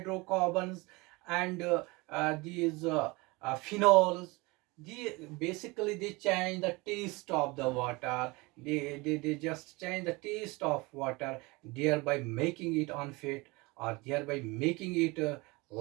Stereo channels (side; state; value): left; quieter; 24.6 dB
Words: and these phenols. Basically they change the taste of the water. They just change the taste of water, thereby making it unfit, or thereby making it